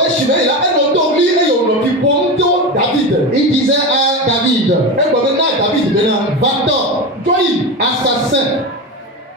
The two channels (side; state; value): both; normal; correlation 0.21